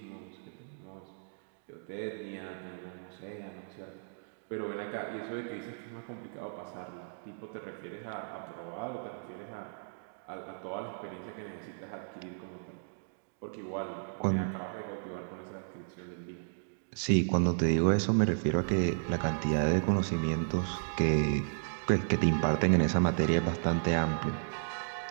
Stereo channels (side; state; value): left; silent; digital silence